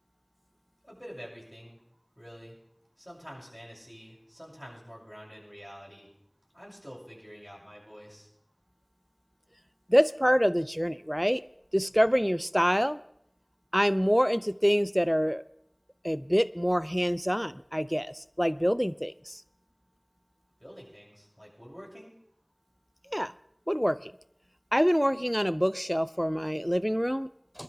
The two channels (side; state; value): both; identical; correlation 1.00